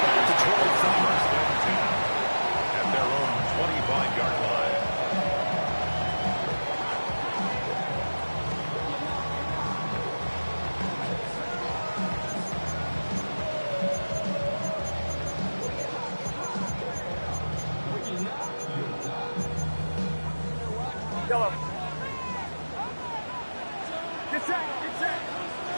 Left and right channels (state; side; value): inverted; both; correlation -1.00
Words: the 25. At their own 25-yard line. Yellow.